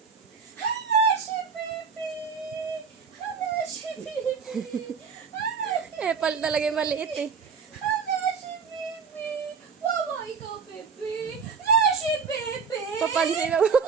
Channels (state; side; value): quieter; left; 5.8 dB